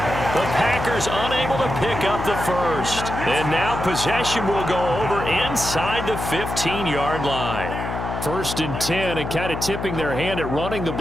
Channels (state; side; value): noise; left; hum, 5 dB below the sound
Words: The Packers unable to pick up the first. And now possession will go over inside the 15-yard line. 1st and 10, and kind of tipping their hand at running the